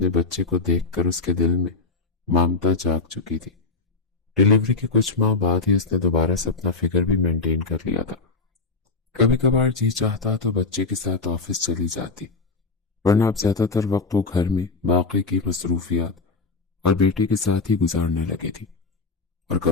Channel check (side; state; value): right; quieter; 4.0 dB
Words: بچے کو دیکھ کر اس کے دل میں ممتا جاگ چکی تھی۔ ڈیلیوری کے کچھ ماہ بعد ہی اس نے دوبارہ سے اپنا فگر بھی مینٹین کر لیا تھا۔ کبھی کبھار جی چاہتا تو بچے کے ساتھ آفس چلی جاتی، ورنہ اب زیادہ تر وقت وہ گھر میں باقی کی مصروفیات اور بیٹے کے ساتھ ہی گزارنے لگی تھی۔ اور